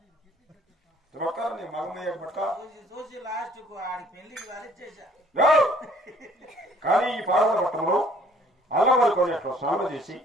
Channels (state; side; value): normal; both; correlation 0.58